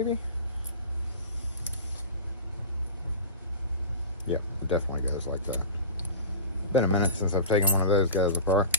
Yeah, it definitely goes like that. Been a minute since I've taken one of those guys apart.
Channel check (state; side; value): inverted; both; correlation -0.32